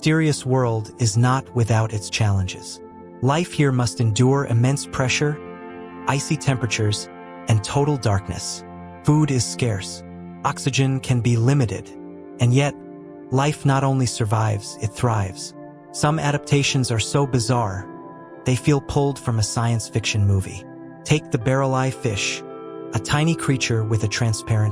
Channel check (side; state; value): both; identical; correlation 1.00